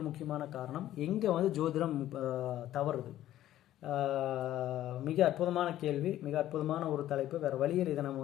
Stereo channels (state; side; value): quieter; right; 13.1 dB